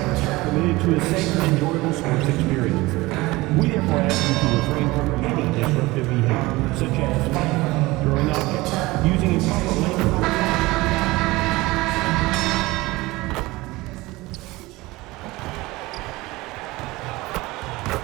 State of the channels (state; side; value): quieter; left; 20.7 dB